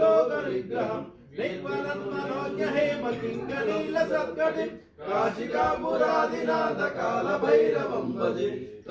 निर्मलन्मनोज्ञ हेमकिङ्करीलसत्कटिं काशिकापुरादिनाथ कालभैरवं भजे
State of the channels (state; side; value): identical; both; correlation 1.00